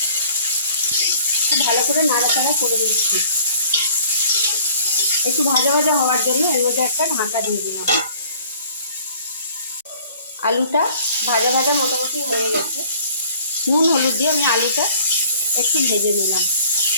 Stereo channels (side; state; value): both; inverted; correlation -0.53